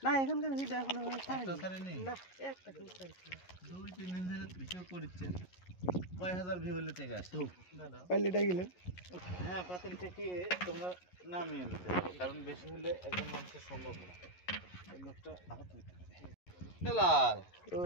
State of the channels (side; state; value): right; late; 11 ms